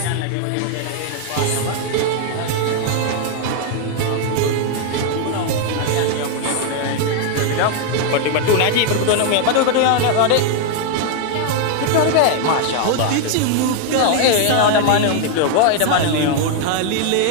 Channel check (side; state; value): both; different; correlation 0.00